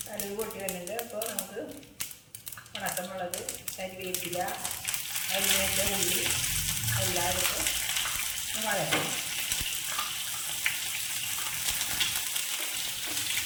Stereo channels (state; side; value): identical; both; correlation 1.00